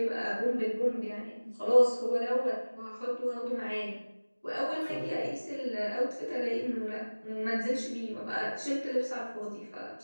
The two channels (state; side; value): inverted; both; correlation -1.00